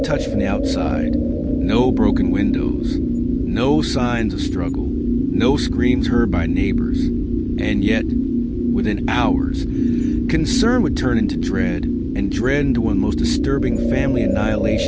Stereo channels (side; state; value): both; identical; correlation 1.00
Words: from the outside. No broken windows, no signs of struggle, no screams heard by neighbors. And yet, within hours, concern would turn into dread, and dread into one of the most disturbing family